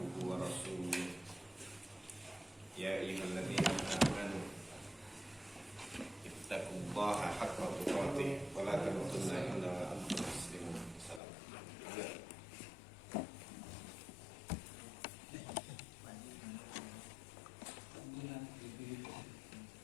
ورسوله يا أيها الذين آمنوا اتقوا الله حق تقاته ولا تموتن إلا وأنتم مسلمون. السلام عليكم.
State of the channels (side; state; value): right; drops out; at 11.2 s